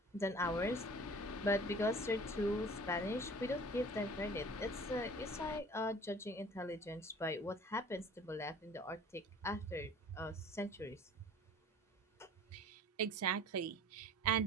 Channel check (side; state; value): both; normal; correlation 0.46